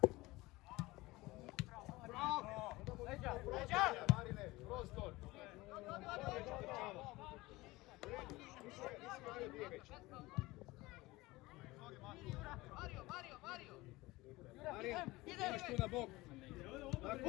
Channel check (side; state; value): right; quieter; 20.4 dB